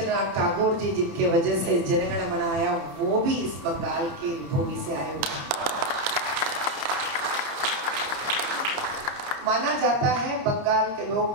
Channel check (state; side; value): late; left; 30 ms